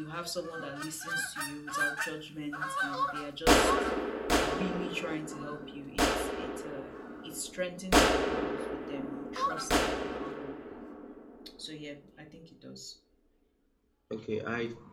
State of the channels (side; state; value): both; identical; correlation 1.00